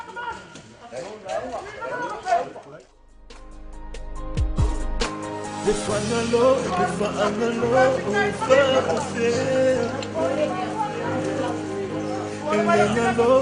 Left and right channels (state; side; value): identical; both; correlation 1.00